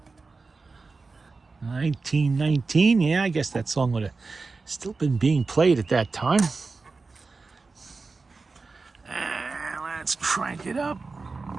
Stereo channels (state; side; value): quieter; left; 4.0 dB